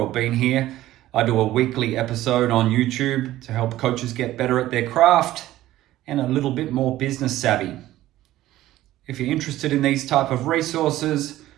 been here, I do a weekly episode on YouTube to help coaches get better at their craft and a little bit more business savvy. If you're interested in these type of resources,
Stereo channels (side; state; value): left; quieter; 14.9 dB